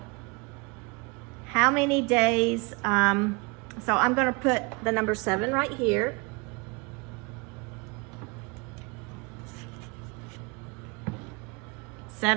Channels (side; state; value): left; quieter; 28.8 dB